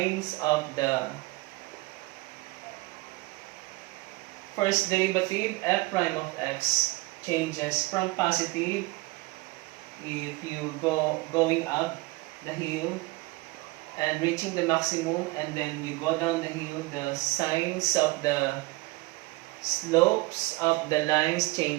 of the first derivative f prime of x changes from positive if you going up the hill and reaching the maximum, and then you go down the hill, the signs of the slopes of the lines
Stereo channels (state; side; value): quieter; left; 22.9 dB